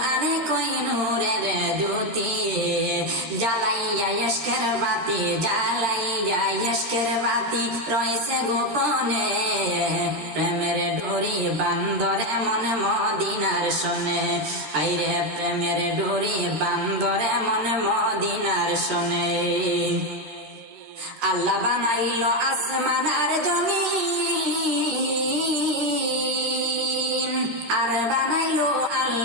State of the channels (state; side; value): late; left; 13 ms